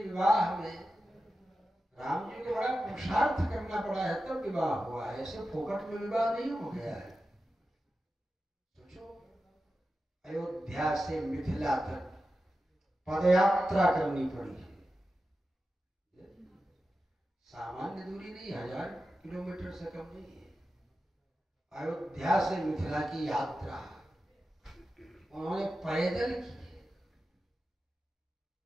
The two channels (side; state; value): both; normal; correlation 0.92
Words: विवाह में राम जी को बड़ा पुरुषार्थ करना पड़ा है तब विवाह हुआ है, ऐसे फोकट में विवाह नहीं हो गया है। सोचो, अयोध्या से मिथिला तक पदयात्रा करनी पड़ी है। सामान्य दूरी नहीं, 1000 किलोमीटर से कम नहीं है। अयोध्या से मिथिला की यात्रा उन्होंने पैदल की है।